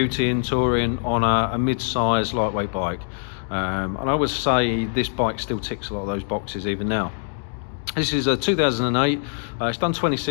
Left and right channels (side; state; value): right; silent; 63 dB below the other